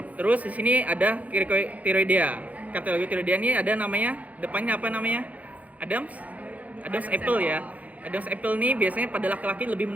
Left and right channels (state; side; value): late; left; 0.073 ms